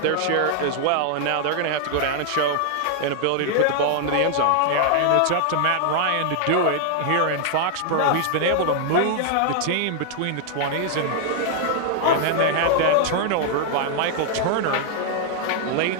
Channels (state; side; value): different; both; correlation 0.00